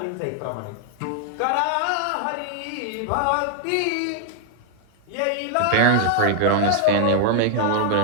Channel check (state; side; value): different; both; correlation 0.00